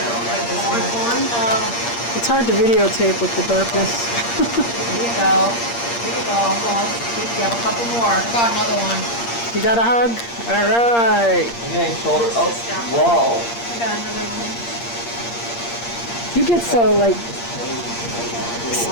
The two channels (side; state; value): right; late; 8.6 ms